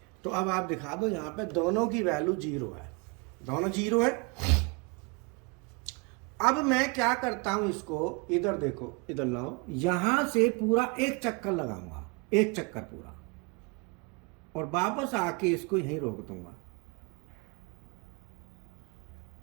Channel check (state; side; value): quieter; left; 30.4 dB